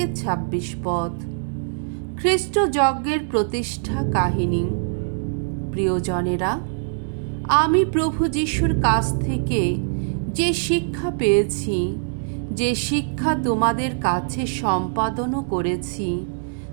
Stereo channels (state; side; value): silent; left; digital silence